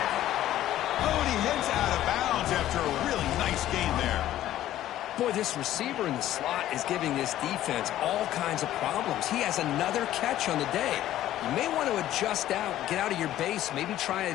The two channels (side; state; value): right; quieter; 13.2 dB